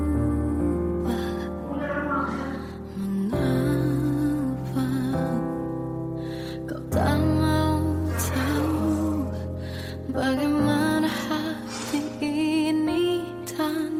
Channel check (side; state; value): both; identical; correlation 1.00